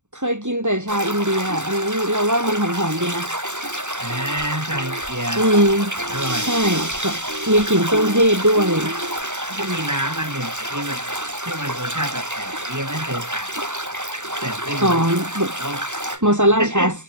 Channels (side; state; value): left; late; 0.84 ms